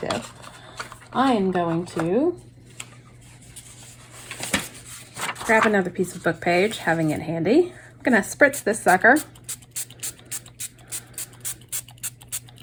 I am going to grab another piece of book page, having it handy. I'm gonna spritz this sucker.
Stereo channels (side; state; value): both; identical; correlation 1.00